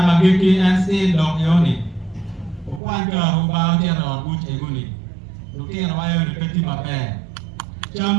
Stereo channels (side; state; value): left; drops out; at 2.8 s